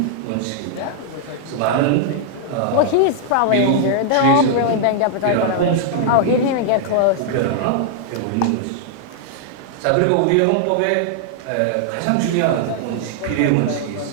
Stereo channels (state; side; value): different; both; correlation -0.01